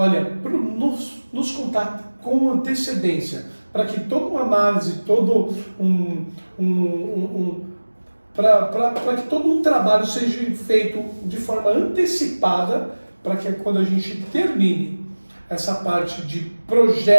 nos contate com antecedência, para que toda uma análise, para que todo um trabalho seja feito de forma antecipada, para que quando a gente termine essa parte de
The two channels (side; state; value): both; inverted; correlation -1.00